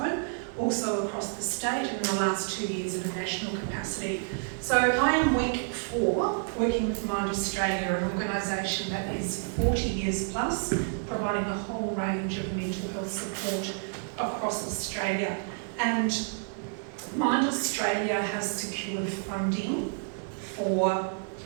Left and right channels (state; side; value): silent; left; 58 dB below the other